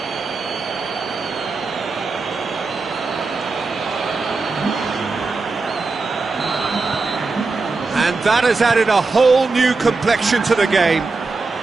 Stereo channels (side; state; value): left; quieter; 3.9 dB